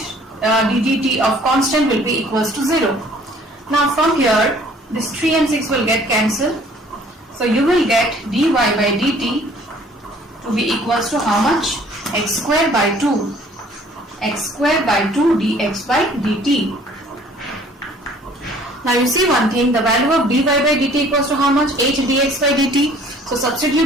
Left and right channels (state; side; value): normal; both; correlation 0.55